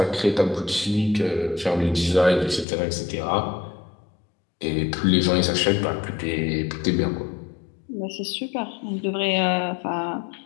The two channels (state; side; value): drops out; right; at 2.7 s